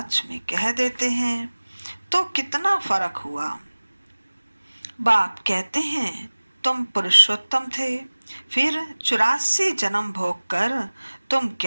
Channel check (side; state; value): both; inverted; correlation -1.00